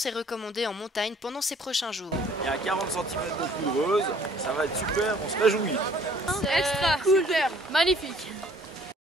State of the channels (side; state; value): both; normal; correlation 0.57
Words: est recommandée en montagne pendant ces prochains jours. Il y a 40 cm de couveuse, ça va être super, on se réjouit. Extra cool, magnifique.